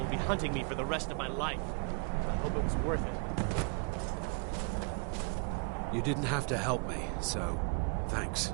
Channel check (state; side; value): quieter; left; 36.8 dB